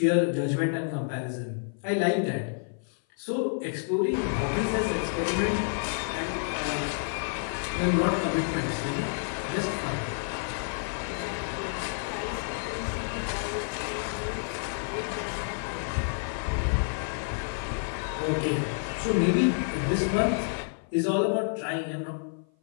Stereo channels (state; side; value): silent; right; 55 dB below the other